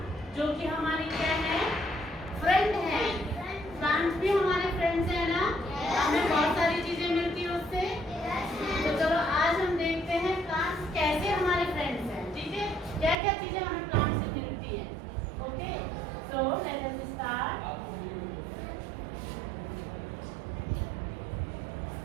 जो कि हमारी क्या है? फ्रेंड है। प्लांट्स भी हमारे फ्रेंड्स हैं ना? हमें बहुत सारी चीजें मिलती है उससे। तो चलो आज हम देखते हैं प्लांट्स कैसे हमारे फ्रेंड्स हैं। ठीक है, क्या क्या चीजें हमें प्लांट से मिलती है। Okay, so let us start.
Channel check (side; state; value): left; drops out; at 13.2 s